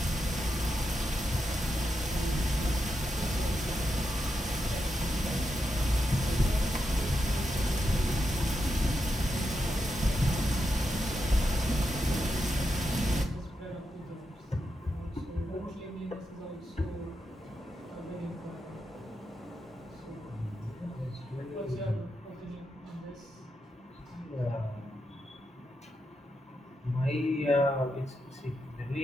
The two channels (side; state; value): both; normal; correlation 0.85